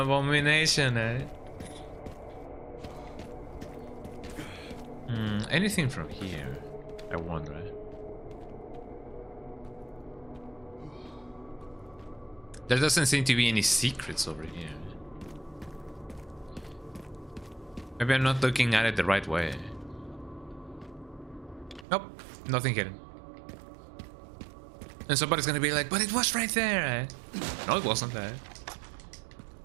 Anything from here? I wonder. There doesn't seem to be any secrets over here. Maybe I'm not looking at it the right way. Nope, nothing hidden. And somebody's gonna be like, but it was right there, No, it wasn't there.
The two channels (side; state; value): left; drops out; at 21.9 s